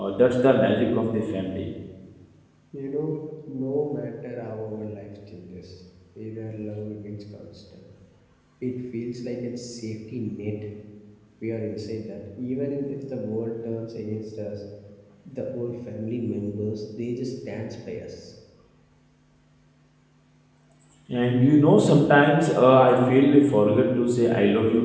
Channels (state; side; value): identical; both; correlation 1.00